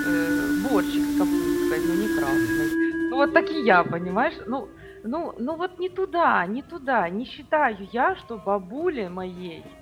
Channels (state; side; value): identical; both; correlation 1.00